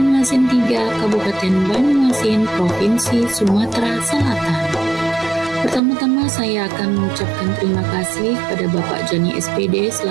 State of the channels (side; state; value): left; drops out; at 5.8 s